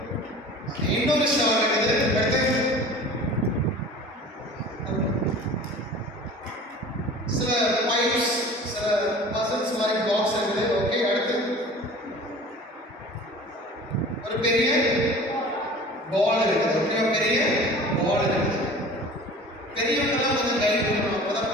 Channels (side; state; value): both; normal; correlation 0.42